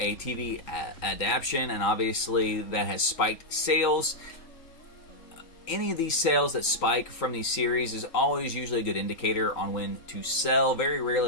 TV adaptation, and obviously that has spiked sales. Any of these sales that spike from these series is always usually a good indicator on when to sell, very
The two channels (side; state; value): right; late; 3.8 ms